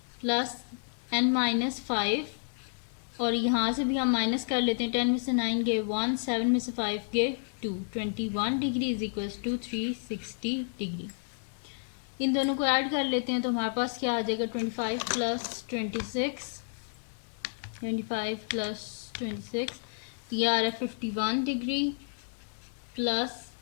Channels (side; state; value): right; silent; 57 dB below the other